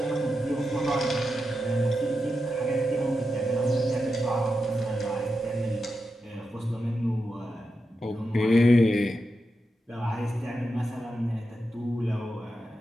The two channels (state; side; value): normal; both; correlation 0.88